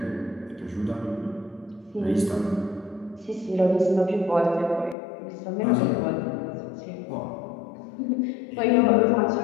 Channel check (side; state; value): right; drops out; at 5.0 s